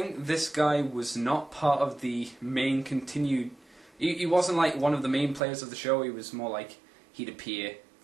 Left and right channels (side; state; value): left; drops out; at 5.4 s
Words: this guy was not part of the main continued... He wasn't like one of the main players of the show. He was more like he'd appear